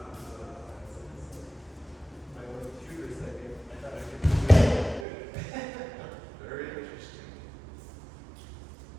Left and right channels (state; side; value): drops out; left; at 5.1 s